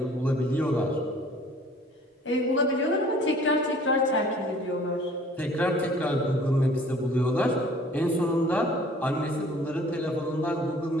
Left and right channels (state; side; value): normal; both; correlation 0.52